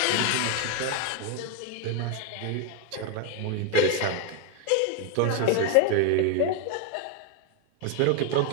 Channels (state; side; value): different; both; correlation 0.01